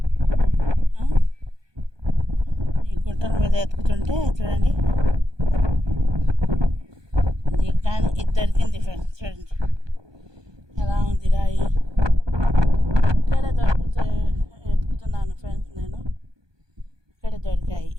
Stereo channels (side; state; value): left; late; 1.2 ms